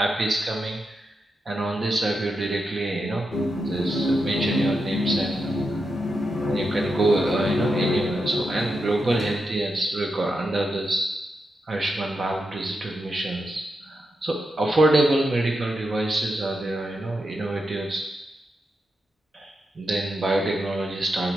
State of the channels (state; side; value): normal; both; correlation 0.86